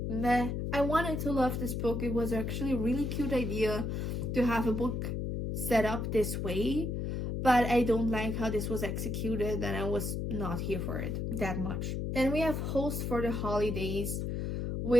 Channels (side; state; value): left; noise; hum, 2 dB below the sound